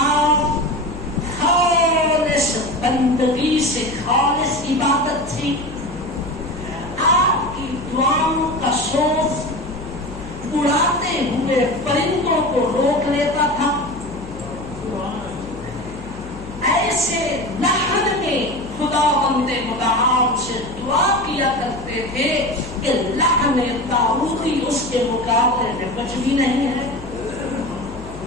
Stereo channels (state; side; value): noise; left; hum, 15 dB below the sound